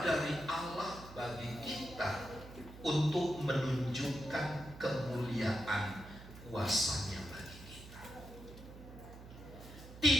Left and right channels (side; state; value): right; noise; hum, 15 dB below the sound